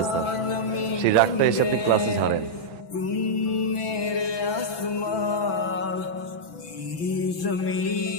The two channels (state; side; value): late; right; 6.0 ms